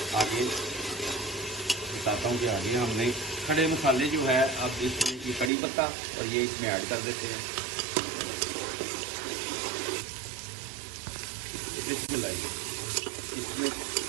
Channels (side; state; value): left; drops out; at 5.5 s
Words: आगे बताता हूँ कि आगे हमने खड़े मसाले जो है, अब इसमें ये कड़ी पत्ता और ये इसमें ऐड कर देते हैं। इसमें लाइए, इसमें